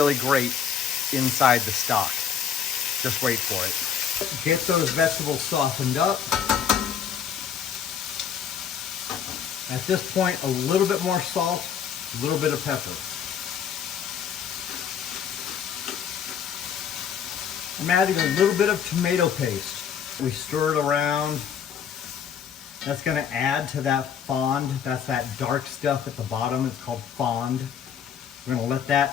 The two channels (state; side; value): quieter; right; 7.8 dB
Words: great inside the stock. Just wait for it. Get those vegetables softened up. At this point, a little bit more salt, a little bit of pepper. I'm adding a little bit of tomato paste. We stir it around. That's gonna add to that fond. That's that dark stuff at the bottom. It's called fond. We're gonna let